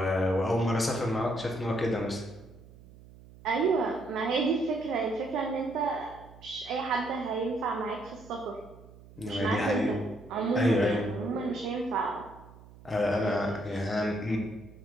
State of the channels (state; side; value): noise; right; hum, 21 dB below the sound